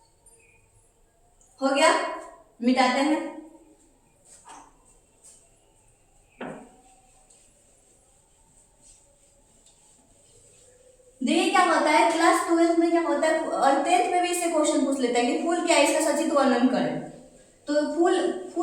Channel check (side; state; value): both; identical; correlation 1.00